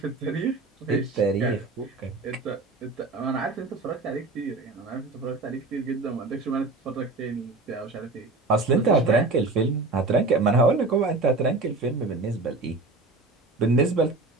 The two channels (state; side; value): quieter; left; 3.4 dB